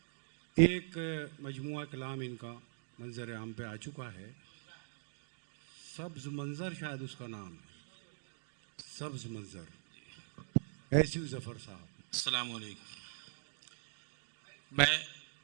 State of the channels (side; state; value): left; silent; digital silence